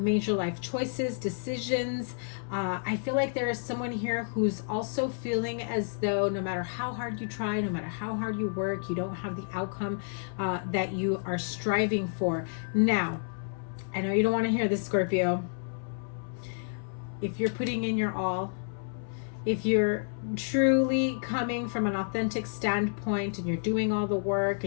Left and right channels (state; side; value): silent; right; 58 dB below the other